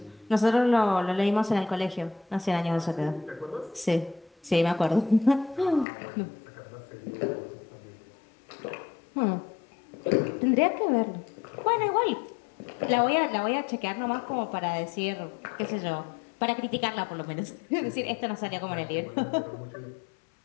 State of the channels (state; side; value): drops out; right; at 5.9 s